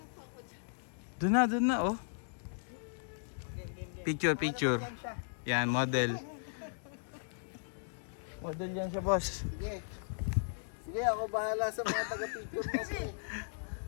Doon na oh. Picture. Yan, model. Model yan siya boss. Sige. Sige, ako bahala sa mga taga-picture mo.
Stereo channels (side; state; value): right; silent; digital silence